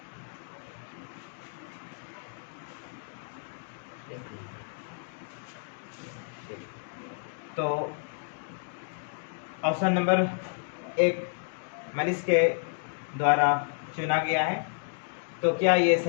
तो ऑप्शन नंबर 1 मनीष के द्वारा चुना गया है। तो क्या ये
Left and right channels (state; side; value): silent; right; digital silence